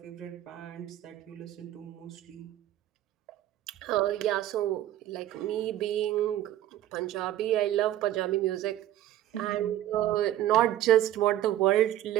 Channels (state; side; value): quieter; left; 13.1 dB